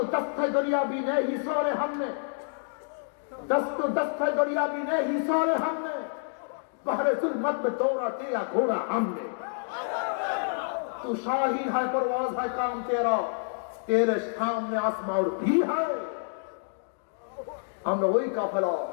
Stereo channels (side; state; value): right; silent; digital silence